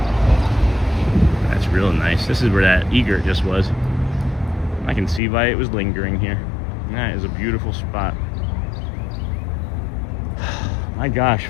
That's real nice. This is where that egret just was. I can see why it was lingering here. That is a beautiful spot. My gosh,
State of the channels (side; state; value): right; drops out; at 5.2 s